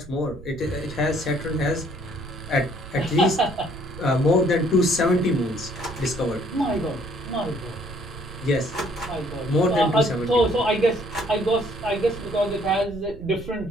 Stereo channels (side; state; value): right; noise; rumble, 15 dB below the sound